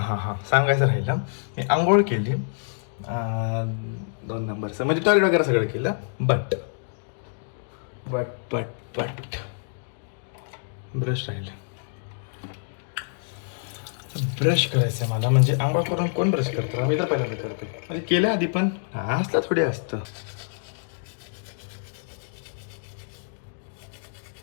सांगायचं राहिलं. मी आंघोळ केली 2 नंबरचं म्हणजे टॉयलेट वगैरे सगळं केलं. बट ब्रश राहिलं. ब्रश करायचं मला म्हणजे आंघोळ करून कोण ब्रश करतं. मी तर पहिल्यांदा करतो म्हणजे केलं आधी पण असलं थोडी असतं.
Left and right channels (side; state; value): right; silent; digital silence